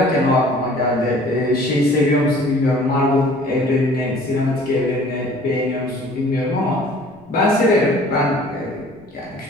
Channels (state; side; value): noise; left; rumble, 30 dB below the sound